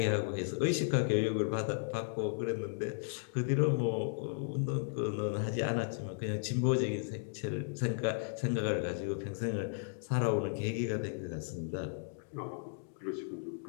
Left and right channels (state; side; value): silent; right; digital silence